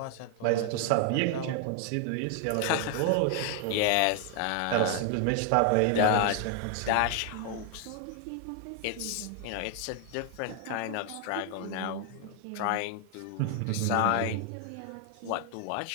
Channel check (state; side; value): different; both; correlation 0.00